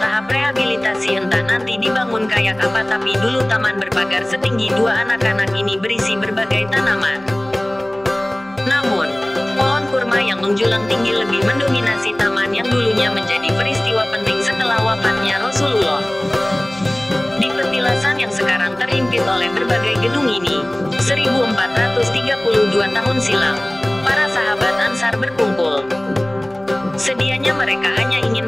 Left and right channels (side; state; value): right; noise; hum, 27 dB below the sound